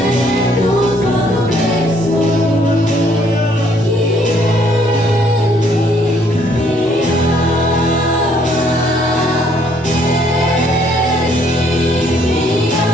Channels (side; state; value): both; normal; correlation 0.65